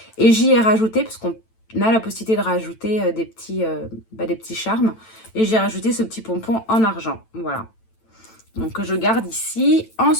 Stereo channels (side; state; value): right; late; 9.0 ms